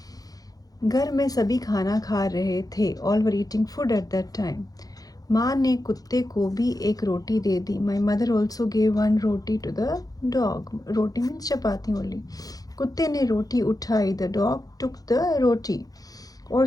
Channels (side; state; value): right; late; 0.18 ms